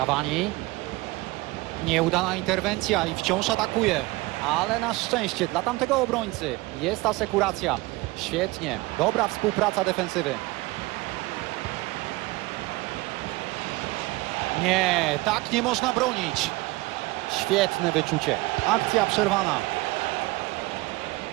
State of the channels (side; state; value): left; quieter; 21.8 dB